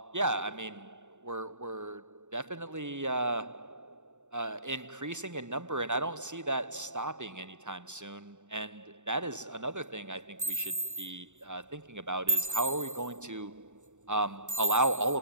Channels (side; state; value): left; late; 0.84 ms